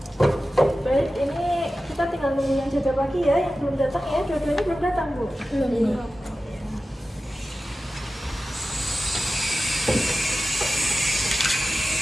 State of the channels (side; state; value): both; normal; correlation 0.95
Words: Baik, ini kita tinggal nunggu yang jaga pagi ya, yang belum datang ya. Dua-duanya belum datang, Bu? Belum.